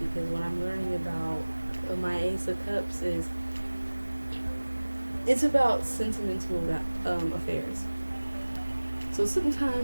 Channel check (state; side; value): inverted; both; correlation -1.00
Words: because what I'm learning about my Ace of Cups is it's about sentimental affairs. So